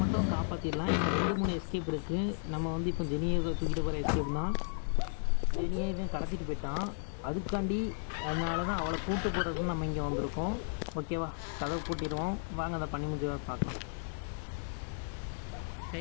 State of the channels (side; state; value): right; silent; digital silence